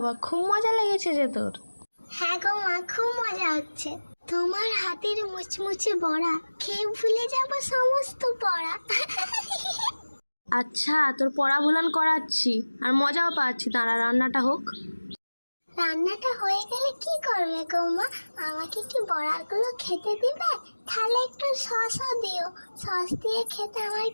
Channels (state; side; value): inverted; both; correlation -1.00